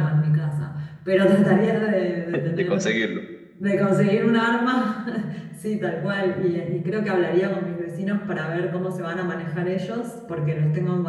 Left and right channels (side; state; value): both; identical; correlation 1.00